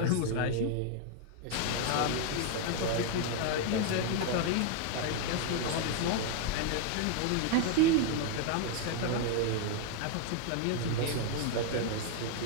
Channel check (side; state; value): both; different; correlation 0.00